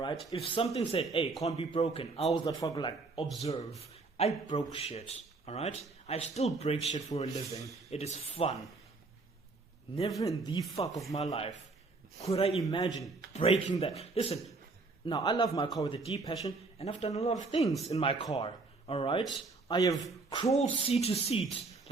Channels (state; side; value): quieter; left; 3.7 dB